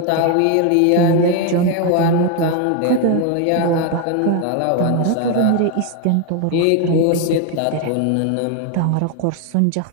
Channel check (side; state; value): both; different; correlation 0.01